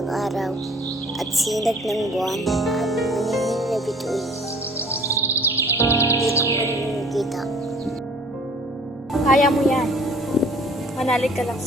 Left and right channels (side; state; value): both; normal; correlation 0.52